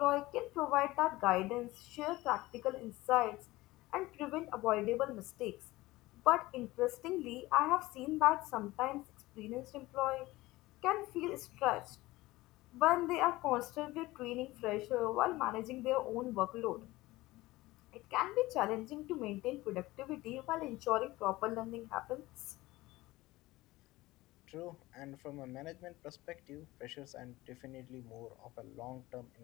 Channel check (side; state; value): right; quieter; 19.1 dB